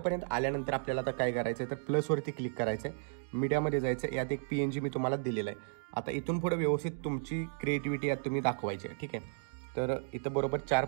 आल्यानंतर आपल्याला आता काय करायचं आहे, तर प्लसवरती क्लिक करायचं आहे, मीडियामध्ये जायचं, यात एक PNG मी तुम्हाला दिलेला आहे। आता इथून पुढे व्यवस्थित तुमची क्रिएटिव्हिटी यात तुम्ही दाखवायची आहे। ठीक आहे, तर इथं बरोबर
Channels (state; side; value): silent; left; digital silence